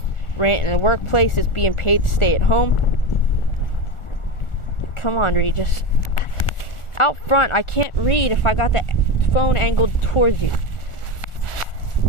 rant in the workplace is being paid to stay at home. Come on, Regis. Out front, I can't read if I got the phone angled towards you.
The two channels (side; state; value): right; late; 1.4 ms